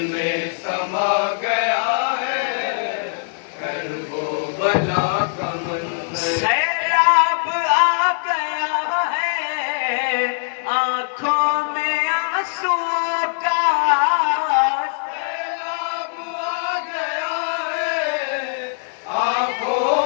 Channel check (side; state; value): right; silent; digital silence